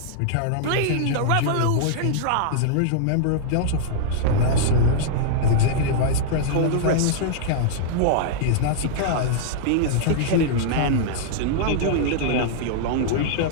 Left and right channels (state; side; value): different; both; correlation -0.01